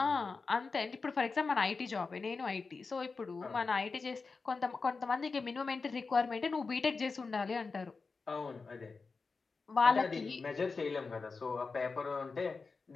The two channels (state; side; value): quieter; right; 4.4 dB